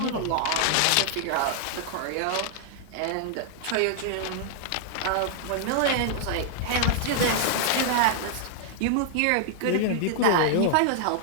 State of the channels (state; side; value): different; both; correlation -0.01